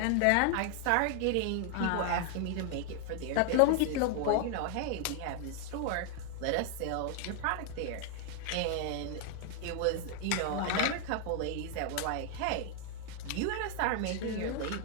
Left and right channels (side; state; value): both; different; correlation 0.00